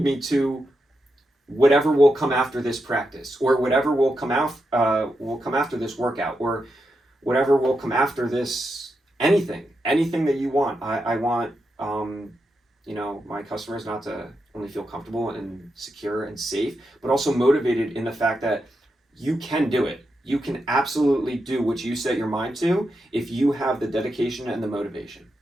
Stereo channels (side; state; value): both; normal; correlation 0.86